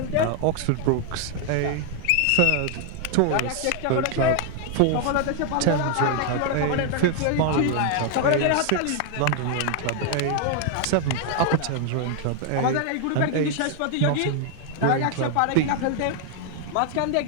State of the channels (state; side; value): different; both; correlation 0.00